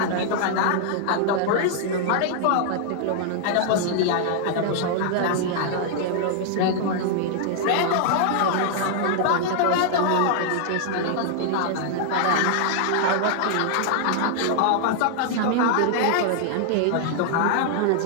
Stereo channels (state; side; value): different; both; correlation -0.01